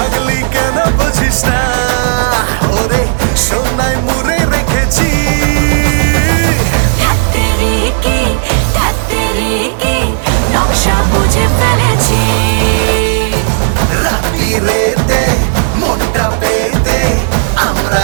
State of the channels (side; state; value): left; silent; digital silence